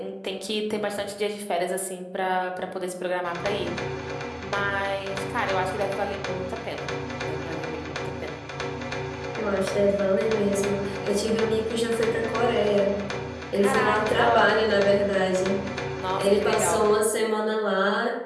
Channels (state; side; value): identical; both; correlation 1.00